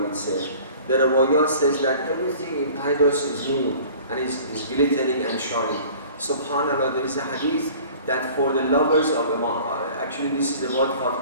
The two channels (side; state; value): both; inverted; correlation -0.46